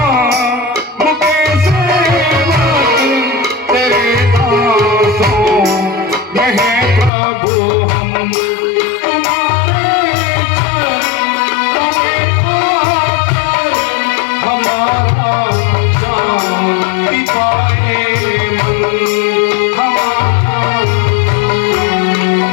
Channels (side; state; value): right; drops out; at 7.1 s